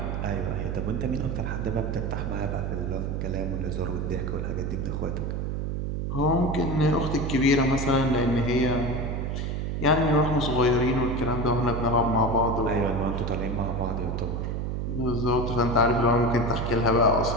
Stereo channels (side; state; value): right; noise; hum, 2 dB below the sound